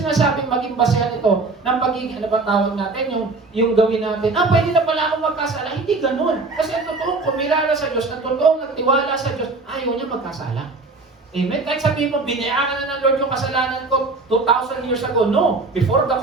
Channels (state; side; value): quieter; left; 3.6 dB